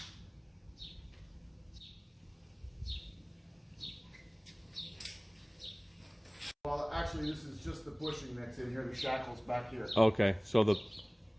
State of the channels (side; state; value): both; identical; correlation 1.00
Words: Well, actually, this is just the bushing that's in here. The shackle's back here. Okay, so